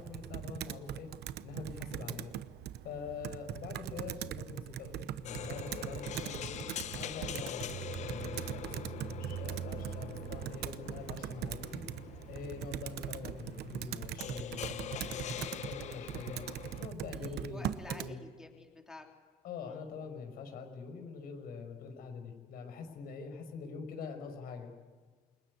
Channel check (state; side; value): normal; both; correlation 0.36